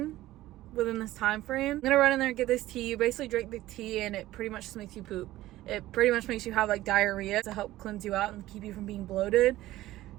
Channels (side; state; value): left; quieter; 15.9 dB